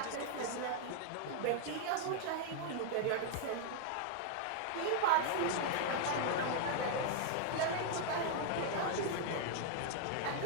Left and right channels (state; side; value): different; both; correlation 0.00